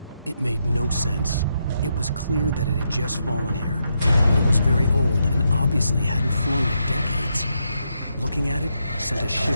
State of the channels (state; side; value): inverted; both; correlation -0.81